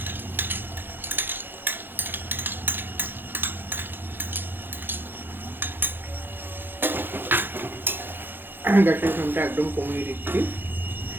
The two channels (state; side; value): late; left; 0.099 ms